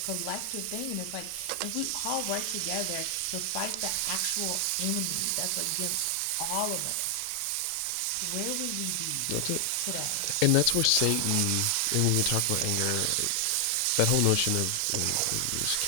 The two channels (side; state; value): both; different; correlation 0.00